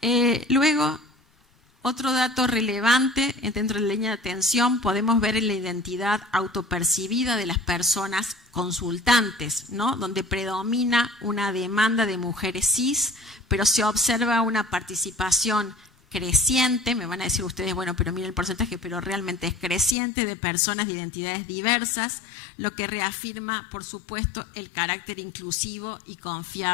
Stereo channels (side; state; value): right; drops out; at 20.0 s